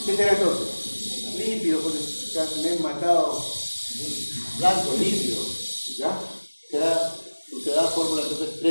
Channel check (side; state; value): both; inverted; correlation -1.00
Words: ¿Qué será entonces? Lípido, pues ya me he matado. Blanco, lípido. ¿Ya? Será fórmula entonces